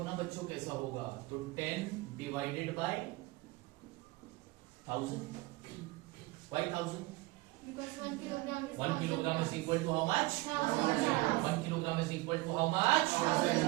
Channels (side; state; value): left; quieter; 21.5 dB